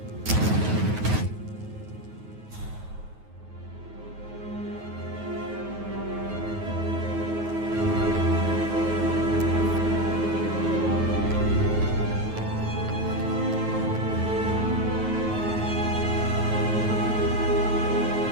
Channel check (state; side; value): late; left; 9.3 ms